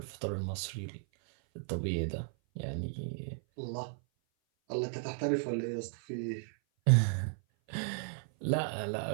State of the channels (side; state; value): left; silent; 55 dB below the other